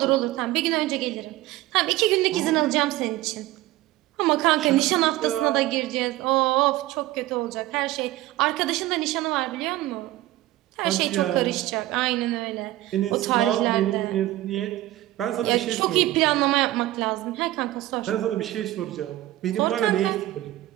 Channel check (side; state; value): left; quieter; 16.2 dB